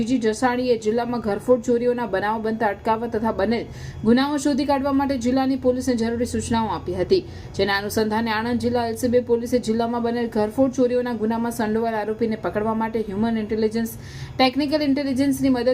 જસાણીએ જિલ્લામાં ઘરફોડ ચોરીઓના બનાવો બનતા અટકાવવા તથા બનેલ ગુનાઓ શોધી કાઢવા માટે જિલ્લાની પોલીસને જરૂરી સૂચનાઓ આપી હતી। જેના અનુસંધાને આણંદ જિલ્લા એલસીબી પોલીસે જિલ્લામાં બનેલ ઘરફોડ ચોરીઓના ગુનામાં સંડોવાયેલ આરોપીને પકડવા માટે હ્યુમન ઇન્ટેલિજન્સ, ટેકનિકલ ઇન્ટેલિજન્સની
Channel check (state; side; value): identical; both; correlation 1.00